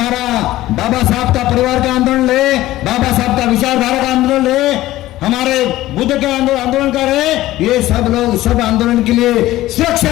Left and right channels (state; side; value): quieter; right; 15.9 dB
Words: बाबा साहब का परिवार का आंदोलन रहे, बाबा साहब का विचारधारा का आंदोलन रहे, हमारे बुद्ध के आंदोलन कर रहे, ये सब लोग सब आंदोलन के लिए